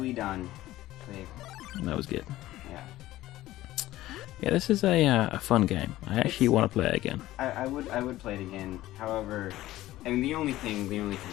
done. Dave. That was good. Yeah. Yeah, this is a fun game. I actually want to play it again. I would play it again. However, I mean, the only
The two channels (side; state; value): right; quieter; 15.8 dB